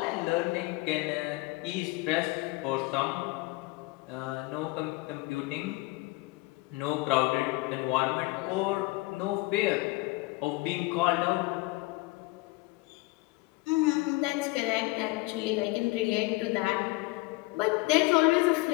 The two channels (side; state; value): right; quieter; 22.2 dB